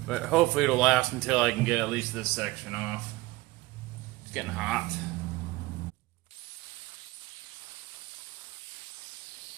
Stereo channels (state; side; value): quieter; left; 19.6 dB